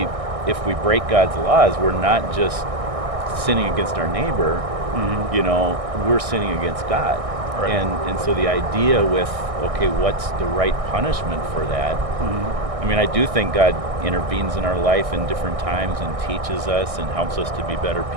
we break God's laws, we're not just sinning against our neighbor, you know, we're sinning against God. Right. And so the idea with, okay, what's the right punishment for that? I mean, I do think God intervenes in our life in different times and teaches us and helps us to be better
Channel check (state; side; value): late; left; 1.6 ms